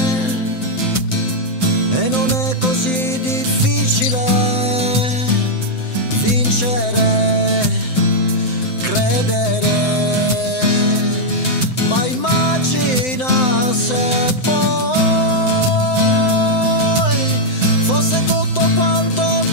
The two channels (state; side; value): late; right; 7.8 ms